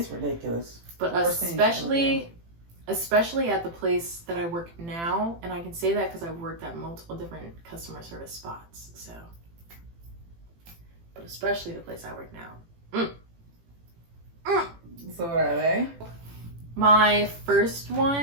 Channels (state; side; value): late; left; 18 ms